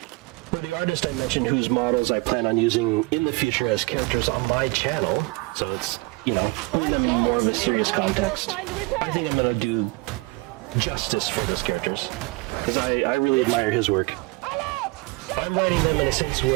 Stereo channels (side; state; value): left; quieter; 25.3 dB